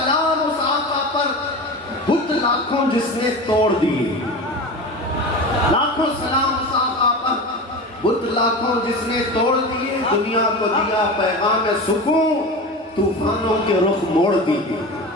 اس آقا پر، بت لاکھوں جس نے توڑ دیے۔ لاکھوں سلام اس آقا پر، بت لاکھوں جس نے توڑ دیے۔ دنیا کو دیا پیغام سکون، طوفانوں کے رخ موڑ دیے۔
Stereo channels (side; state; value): both; normal; correlation 0.29